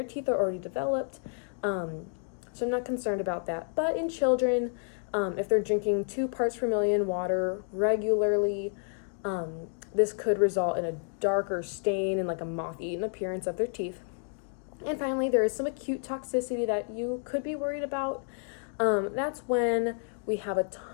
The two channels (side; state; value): right; silent; 57 dB below the other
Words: teeth are already developed, so I'm not concerned about that. But in children, if they're drinking 2 parts per million water regularly, this could result in a darker stain and like a moth-eaten appearance of their teeth. And finally, there is some acute toxicity that you could be worried about. That's when we have a